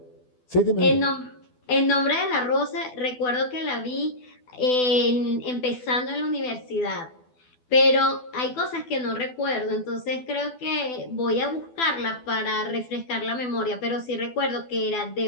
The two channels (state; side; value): late; right; 12 ms